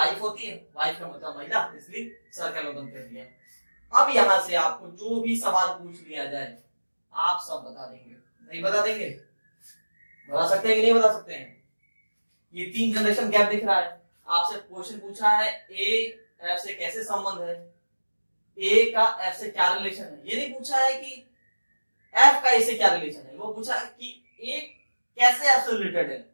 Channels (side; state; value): both; inverted; correlation -1.00